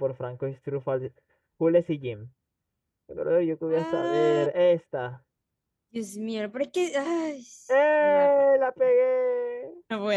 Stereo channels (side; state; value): both; identical; correlation 1.00